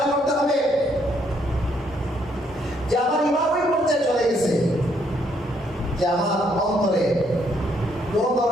করতে হবে যে আমার ঈমান ওই পর্যায়ে চলে গেছে যে আমার অন্তরে কোনো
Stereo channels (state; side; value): normal; both; correlation 0.71